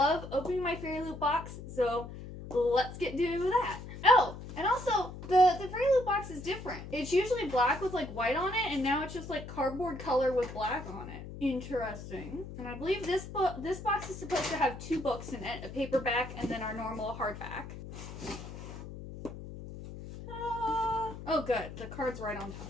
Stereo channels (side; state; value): left; noise; hum, 11 dB below the sound